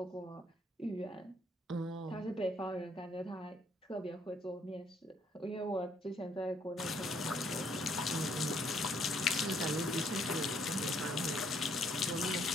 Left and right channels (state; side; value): normal; both; correlation 0.67